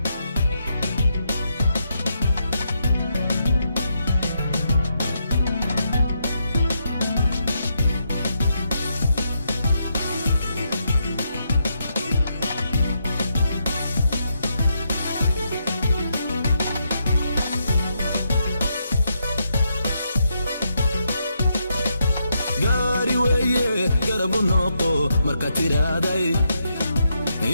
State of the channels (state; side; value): inverted; both; correlation -0.80